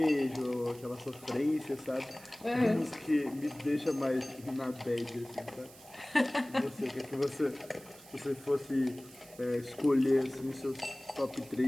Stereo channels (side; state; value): right; noise; hiss, 21 dB below the sound